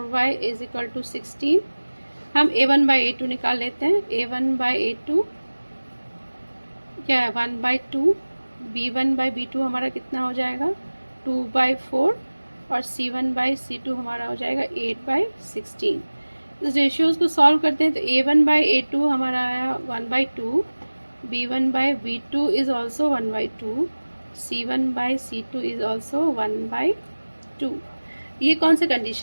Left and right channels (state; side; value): inverted; both; correlation -1.00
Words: is equal to 16। हम a1/a2 निकाल लेते हैं। a1/a2 क्या है, 1/2, b1/b2 हमारा कितना हो जाएगा 2/4 और c1/c2 हमारा हो जाएगा 8/16। इस रेशियोज को सॉल्व करते हैं तो a1/a2 हमारा आया 1/2, b1/b2 is also 1/2, c1/c2 is also 1/2। ये कौन सा